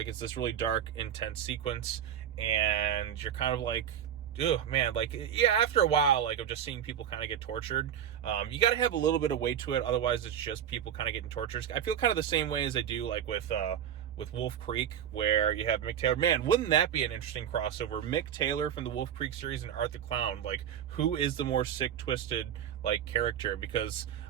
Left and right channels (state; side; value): quieter; left; 9.4 dB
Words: it's this really dark, intense sequence, and you're kind of like, ugh, man, like, yeah, after a while, like, of just seeing people kind of get tortured, you got to have a little bit of weight to it, otherwise it's just people kind of getting tortured. I feel kind of the same way as I do, like, with with Wolf Creek, where you have Mick Taylor. Man, wouldn't that be an interesting crossover? Mick Taylor from the Wolf Creek series and Art the Clown. Like, who is the more sick, twisted, like, character? Because